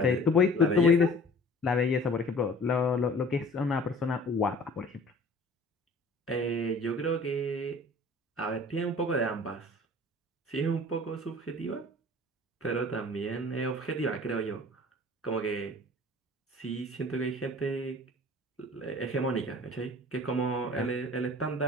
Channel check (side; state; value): both; normal; correlation 0.46